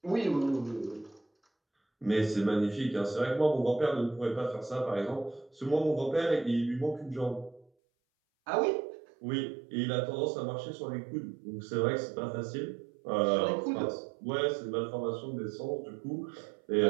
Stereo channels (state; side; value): drops out; left; at 7.7 s